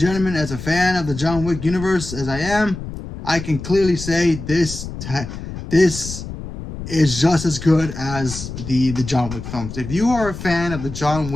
as a fan of the John Wick universe as I am, I can clearly say this is just as good as the John Wick films. If you are a fan of the John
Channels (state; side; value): noise; left; rumble, 9 dB below the sound